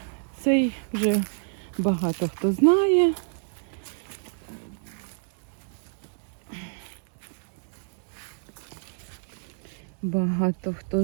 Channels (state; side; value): silent; left; digital silence